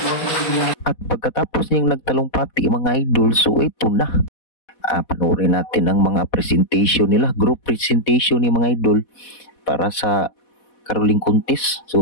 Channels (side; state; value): right; late; 4.1 ms